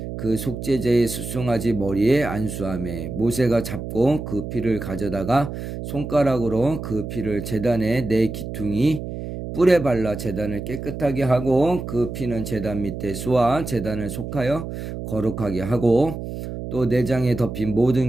그 속죄제의 숫송아지 머리에 안수하며 모세가 잡고 그 피를 가져다가 손가락으로 그 피를 제단의 네 기퉁이 뿔에 발라 제단을 깨끗하게 하고 그 피는 제단 밑에 쏘아 제단을 속하여 거룩하게 하고 또 내장에 덮인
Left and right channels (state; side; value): noise; right; hum, 7 dB below the sound